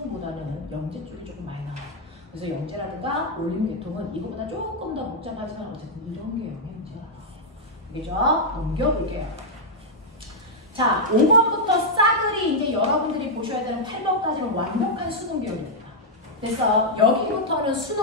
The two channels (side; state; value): both; normal; correlation -0.03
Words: 영재 쪽이 조금 많이 나와요. 그래서 영재라든가 올림 계통은 이거보다 조금 더 복잡하지만 어쨌든 이런 개형의 문제가 나와요. 알겠죠? 넘겨볼게요. 자, 5번부터 싸그리 이제 여러분들이 보셔야 되는 8번까지는 완벽한 수능 계열입니다. 그래서 여기부터는